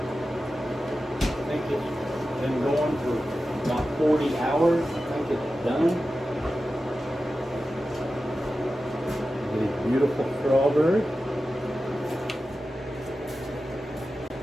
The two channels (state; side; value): normal; both; correlation 0.93